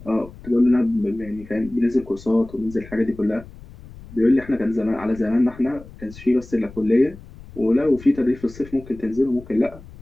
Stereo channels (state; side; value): noise; left; rumble, 18 dB below the sound